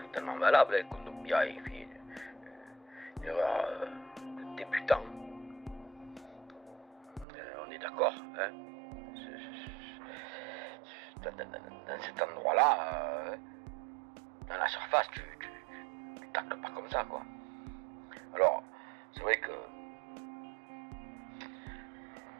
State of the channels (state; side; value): drops out; left; at 7.2 s